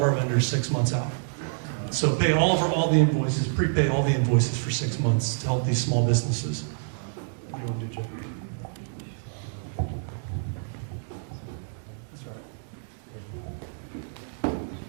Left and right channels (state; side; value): silent; left; digital silence